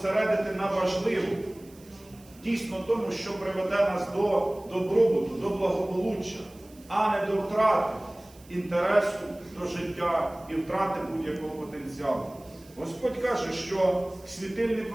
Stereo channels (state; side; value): noise; right; hiss, 25 dB below the sound